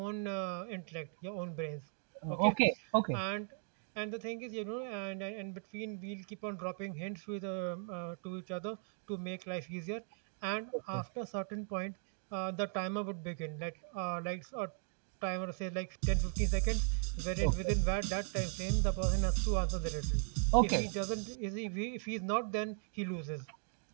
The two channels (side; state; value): left; silent; 53 dB below the other